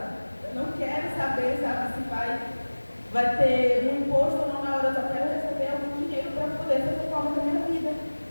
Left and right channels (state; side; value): inverted; both; correlation -1.00